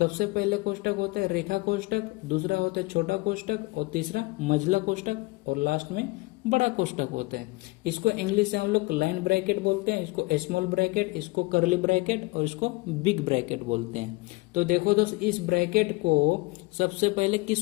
पहले कोष्टक होता है रेखा कोष्टक, दूसरा होता है छोटा कोष्टक और तीसरा मझला कोष्टक और लास्ट में बड़ा कोष्टक होता है। इसको इंग्लिश से हम लोग लाइन ब्रैकेट बोलते हैं, इसको स्मॉल ब्रैकेट, इसको कर्ली ब्रैकेट और इसको बिग ब्रैकेट बोलते हैं। तो देखो दोस्त, इस ब्रैकेट को सबसे पहले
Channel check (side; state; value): right; quieter; 23.6 dB